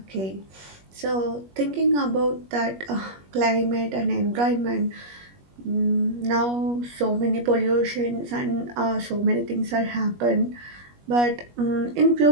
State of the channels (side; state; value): left; late; 21 ms